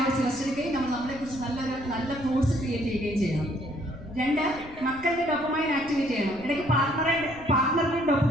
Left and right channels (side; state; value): left; noise; rumble, 18 dB below the sound